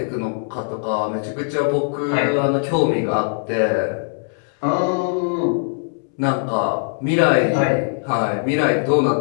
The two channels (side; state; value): right; silent; 65 dB below the other